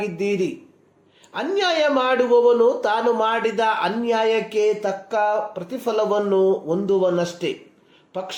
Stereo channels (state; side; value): identical; both; correlation 1.00